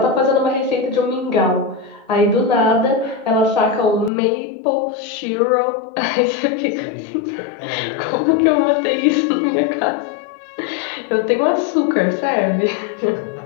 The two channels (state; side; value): drops out; right; at 4.1 s